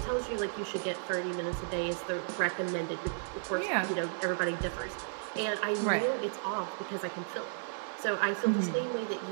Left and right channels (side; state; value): left; silent; digital silence